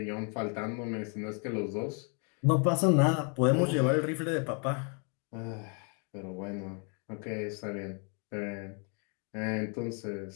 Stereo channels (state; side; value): quieter; right; 39.5 dB